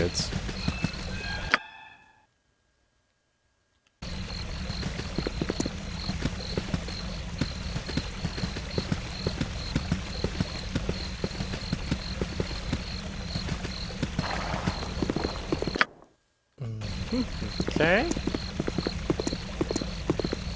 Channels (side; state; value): both; identical; correlation 1.00